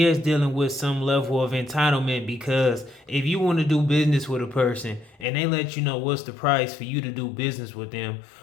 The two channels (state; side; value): drops out; right; at 5.2 s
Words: is dealing with some level of entitlement, because if you want to do business with a person and they let you know what's the price for you to do business with them,